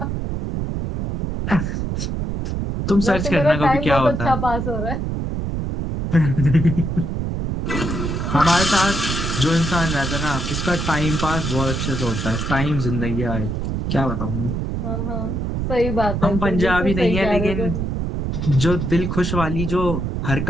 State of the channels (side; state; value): right; noise; rumble, 2 dB below the sound